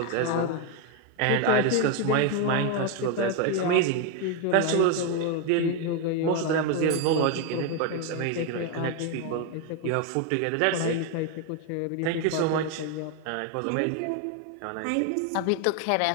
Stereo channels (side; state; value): both; different; correlation 0.01